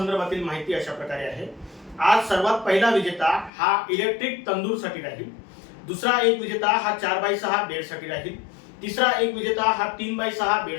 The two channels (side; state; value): right; drops out; at 3.5 s